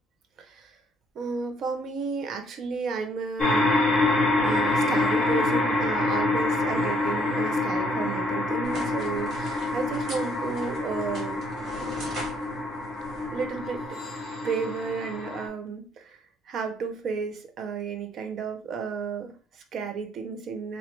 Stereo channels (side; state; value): both; normal; correlation 0.66